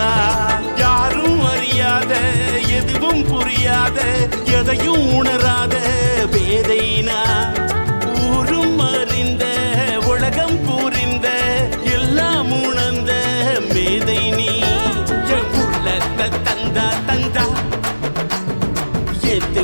யாரும் அறியாத எதுவும் புரியாத எதையும் உணராத பேதைனா ஊரும் அறிந்த உலகம் புரிந்த எல்லாம் உணர்ந்த மேதை நீ என் உள்ளத்தை தந்தா தந்தா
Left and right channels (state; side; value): inverted; both; correlation -1.00